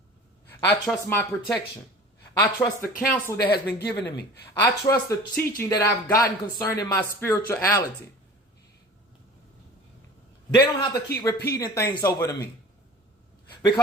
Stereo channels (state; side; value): normal; both; correlation 0.41